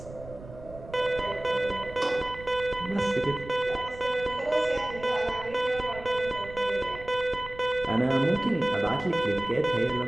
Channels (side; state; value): right; noise; rumble, 16 dB below the sound